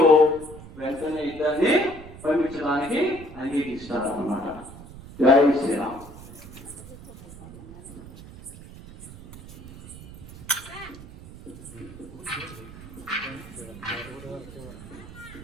వెంటనే ఇద్దరిని పంపించడానికి అంగీకరిస్తాడు అన్నమాట. జై శ్రీరామ్.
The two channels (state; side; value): noise; right; rumble, 16 dB below the sound